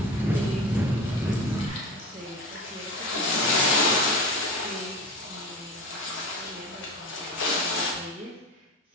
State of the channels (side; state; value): both; normal; correlation 0.28